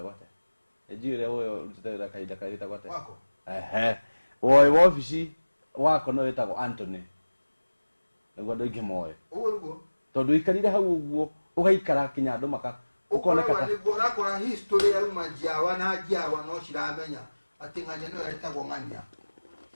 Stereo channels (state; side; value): inverted; both; correlation -1.00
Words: gwate AG ile uyo rutete kaida kaita gwate wako woi wabici wako no wetagwo Anthony niguo andu aingi moe uguo tondu ikarire hau uguo ugaikara kinya andu maka ukoneka ni gora kora history ya majiawa na jiawa no ciramenya ati nganya no etagwo ngania